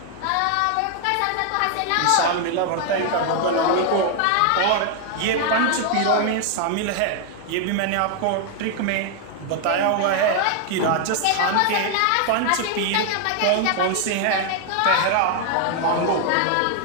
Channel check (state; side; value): different; both; correlation 0.00